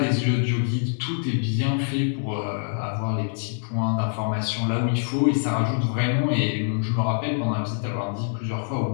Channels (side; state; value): right; silent; 62 dB below the other